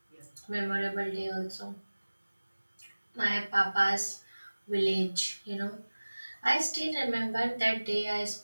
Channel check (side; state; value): both; inverted; correlation -1.00